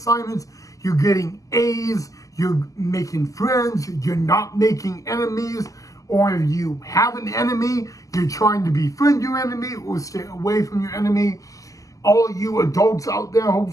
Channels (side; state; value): right; late; 0.16 ms